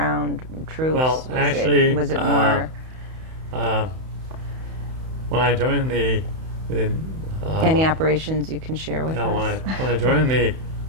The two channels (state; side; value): late; left; 31 ms